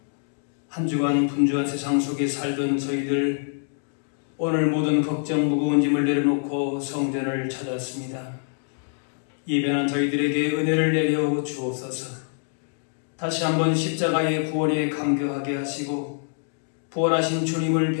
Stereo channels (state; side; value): silent; right; 62 dB below the other